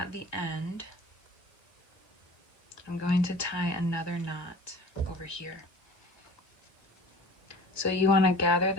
the end, I'm going to tie another knot over here. So you want to gather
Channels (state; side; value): late; right; 1.5 ms